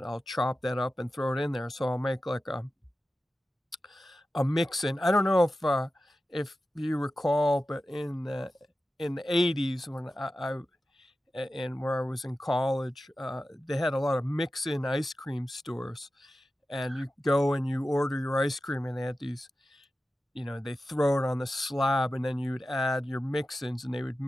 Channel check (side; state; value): both; normal; correlation 0.93